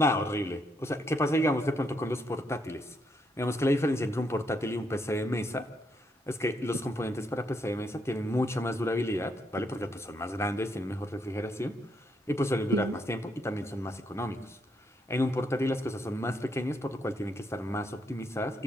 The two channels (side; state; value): both; normal; correlation 0.76